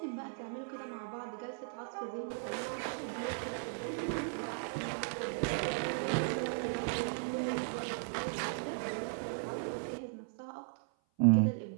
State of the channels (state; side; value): silent; left; 53 dB below the other